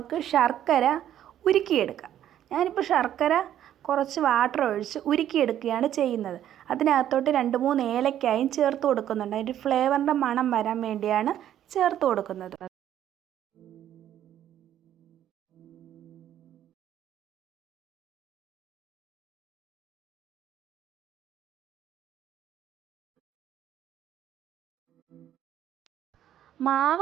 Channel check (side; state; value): left; quieter; 11.2 dB